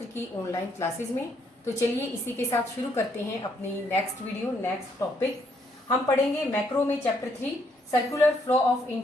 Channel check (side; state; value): both; normal; correlation 0.71